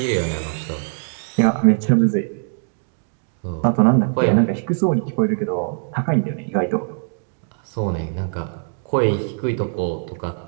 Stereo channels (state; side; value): silent; left; digital silence